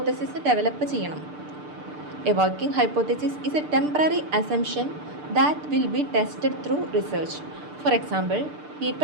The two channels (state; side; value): late; left; 6.7 ms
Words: develop ചെയ്യണം. A working hypothesis is A temporary assumption that will be tested through research. For example,